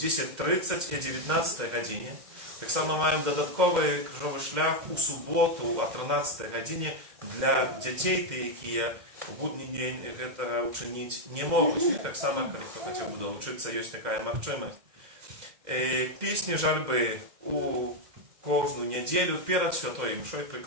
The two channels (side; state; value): left; late; 2.0 ms